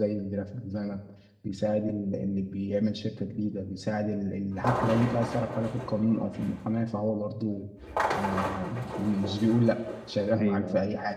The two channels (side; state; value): both; identical; correlation 1.00